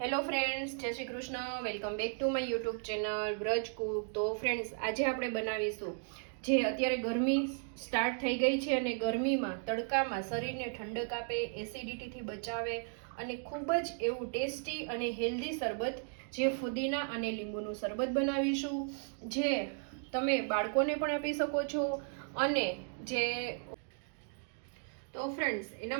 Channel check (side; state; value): left; silent; 54 dB below the other